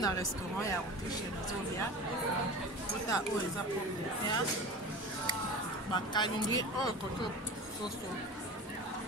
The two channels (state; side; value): normal; both; correlation 0.33